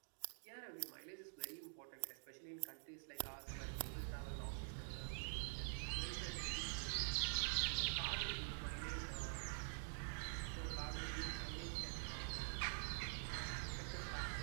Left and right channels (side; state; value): left; silent; digital silence